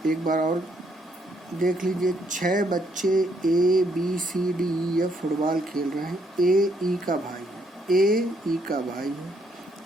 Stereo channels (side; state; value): both; normal; correlation 0.72